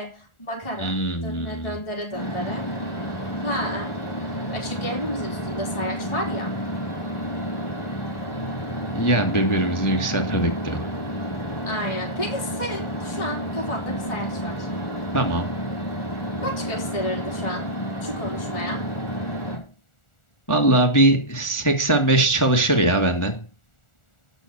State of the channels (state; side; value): late; right; 1.4 ms